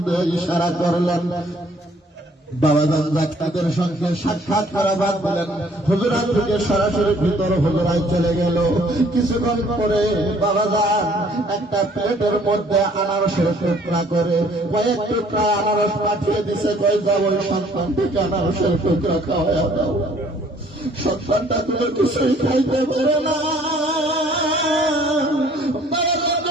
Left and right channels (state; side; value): normal; both; correlation 0.59